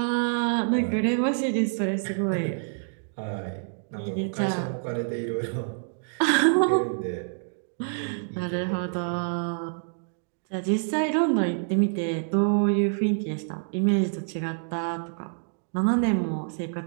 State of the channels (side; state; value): left; silent; digital silence